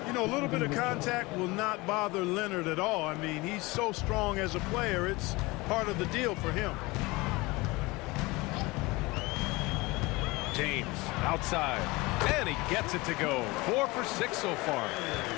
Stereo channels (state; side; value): quieter; right; 22.9 dB